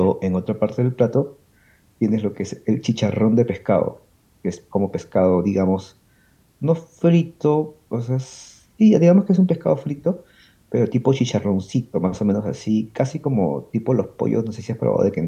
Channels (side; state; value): both; identical; correlation 1.00